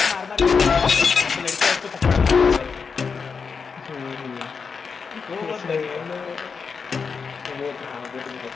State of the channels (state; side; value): quieter; right; 5.5 dB